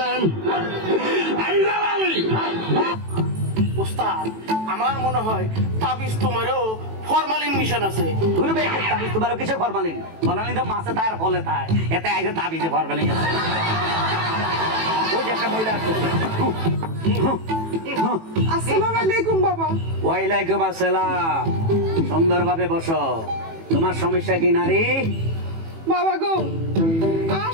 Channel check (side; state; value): left; late; 18 ms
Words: উস্তাদ, আমার মনে হয় তাবিজ তোমারও ফরমালিন মিশন আছে। তুই বেশ তাবিজ তোমারও কিসের ফরমালিন? ফরমালিন তো মাছে তার ফলে তাই, এতে আইসে তাবিজে ফরমালিন আছে। ওই যে একটা মহিলা আসছে। আসসালামু আলাইকুম বাবা। ওয়ালাইকুম আসসালাম। সুন্দরভাবে বসো। তোমার সমস্যা কি নারী? বাবা গো, আর